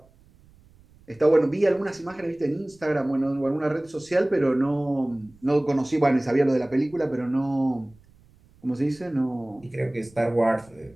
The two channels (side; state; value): right; noise; rumble, 28 dB below the sound